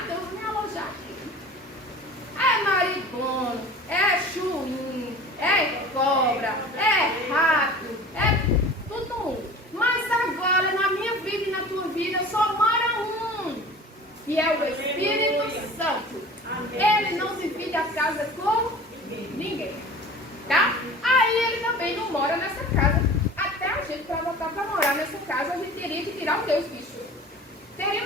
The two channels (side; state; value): both; normal; correlation 0.41